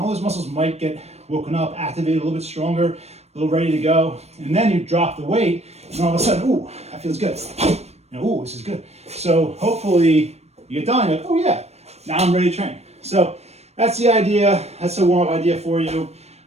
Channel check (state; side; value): late; left; 0.31 ms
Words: those muscles might get woken up, activated a little bit stronger, a little ready to go. And then you drop the weight, and all of a sudden, ooh, that feels good. Ooh, this is good. So hopefully you get done, you're like, oh yeah, now I'm ready to train. So that's the idea. That's a warm-up idea for you.